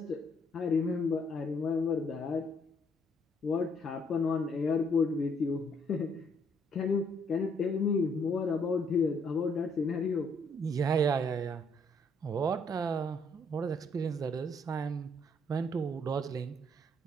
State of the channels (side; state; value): both; normal; correlation 0.68